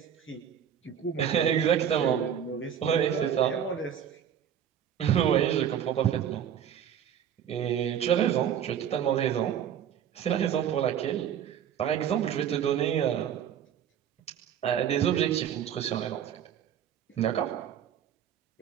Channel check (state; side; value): quieter; left; 9.1 dB